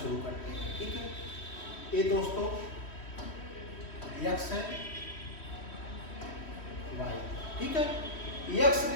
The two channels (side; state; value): right; late; 3.1 ms